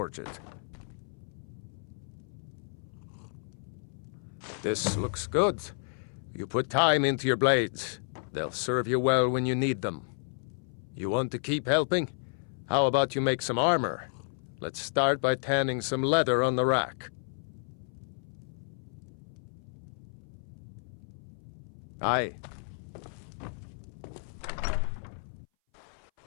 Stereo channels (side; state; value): right; silent; 57 dB below the other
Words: it. This looks good. You put time into your blades. They'll serve you well when you need them. You want to keep helping? How about you make some armor? Let's start by tanning some leather on the rack. Aye.